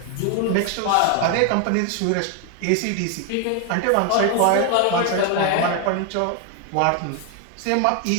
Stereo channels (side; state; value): both; different; correlation 0.01